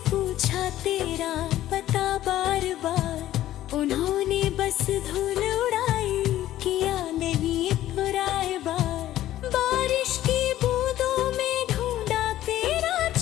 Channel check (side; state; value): right; quieter; 13.6 dB